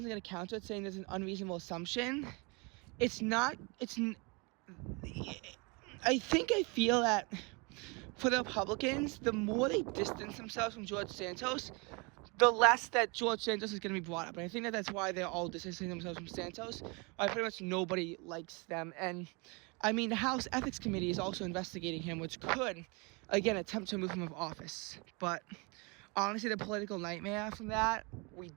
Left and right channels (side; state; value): left; quieter; 29.8 dB